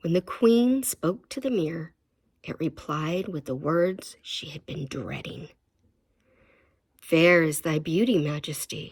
when the queen spoke to the mirror, it replied with the words she had been dreading. "Fair is thy beauty,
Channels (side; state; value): both; identical; correlation 1.00